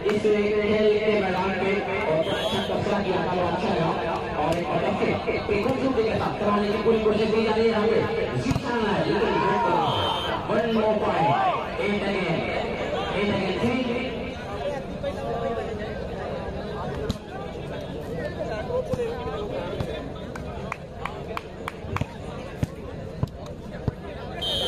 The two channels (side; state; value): both; identical; correlation 1.00